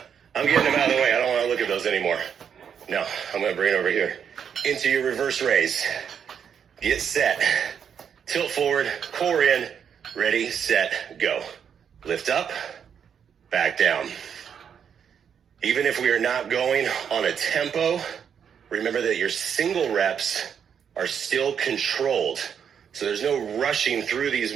I'm getting them out of the way. I don't want to look at those anymore. No, I'm going to bring it over here. Into your reverse raise. Get set. Tilt forward, core in. Ready, set, go. Lift up, back down. Even if we are not going on a tempo, remember that your single reps are still controlled. So there's no rushing through these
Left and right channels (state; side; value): quieter; left; 7.7 dB